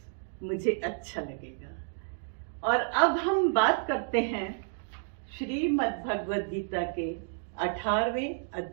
मुझे अच्छा लगेगा। और अब हम बात करते हैं श्रीमद् भगवद गीता के 18वें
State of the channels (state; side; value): silent; left; digital silence